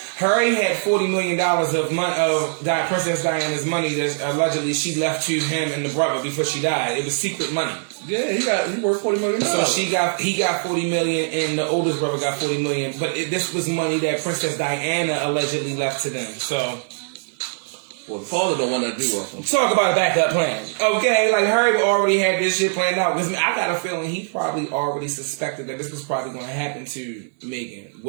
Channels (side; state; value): left; silent; digital silence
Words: Harry had $40 million of Princess Diana's money that allegedly she left to him and the brother before she died. It was secret money. Yeah, he worth $40 million. So he got $40 million, and the oldest brother got $40 million. But this was money that Princess Diana allegedly left to them. So, well, the father don't want to do with them. Talk about a backup plan, okay? Like Harry already had this shit planned out. Because I got a feeling he probably already suspected that this was probably going to happen to Meghan.